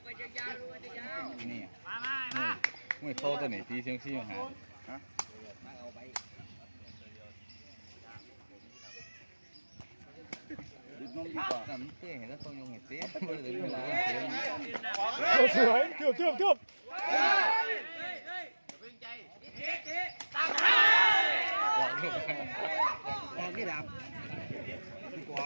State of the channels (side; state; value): both; inverted; correlation -1.00